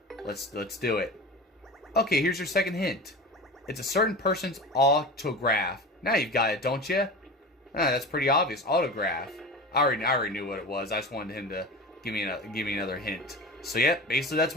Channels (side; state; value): both; normal; correlation 0.31